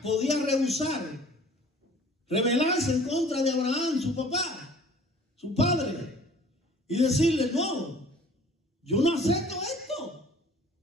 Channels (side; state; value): both; normal; correlation 0.50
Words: podía rehusar, rebelarse en contra de Abraham, su papá, su padre, y decirle, no, yo no acepto esto.